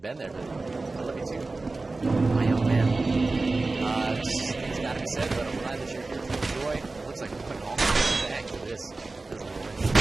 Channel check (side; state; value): left; quieter; 3.4 dB